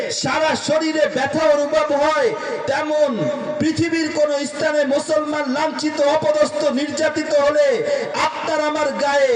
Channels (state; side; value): identical; both; correlation 1.00